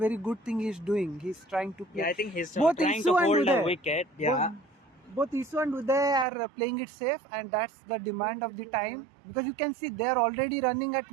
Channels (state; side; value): drops out; left; at 6.2 s